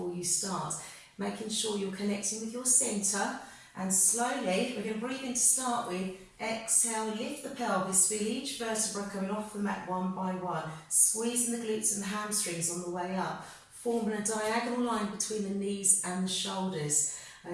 you start. Making sure you're connecting with your centre, and slowly, we're going to breathe in to start with. Exhale, lift the pelvis, feel each vertebra coming off the mat one by one, squeezing the glutes and the hamstrings on the way up, forming a diagonal line between the knees and the shoulders.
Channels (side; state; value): both; identical; correlation 1.00